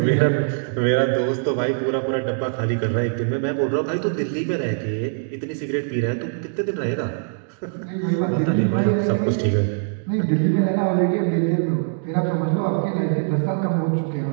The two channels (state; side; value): silent; left; digital silence